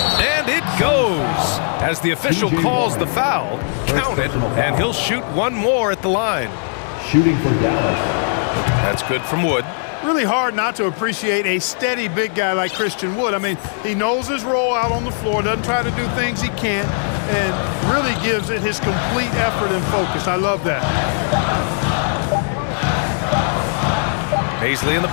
it goes. As the official calls the foul, count it, and he'll shoot one more at the line. Shooting for Dallas. That's good from Wood. Really hard not to appreciate a steady big guy like Christian Wood. I mean, he knows his role out on the floor, doesn't try to do things he can't, and really gives it his complete effort and focus. I love that. Baisley in the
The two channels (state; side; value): silent; right; 67 dB below the other